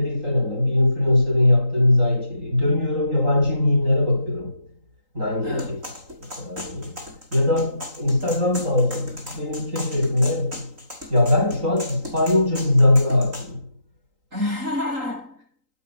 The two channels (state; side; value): late; left; 3.8 ms